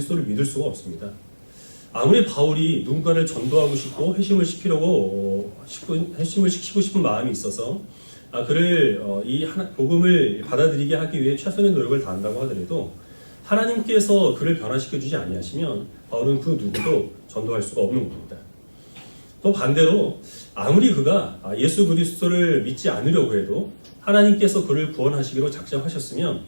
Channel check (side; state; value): both; inverted; correlation -1.00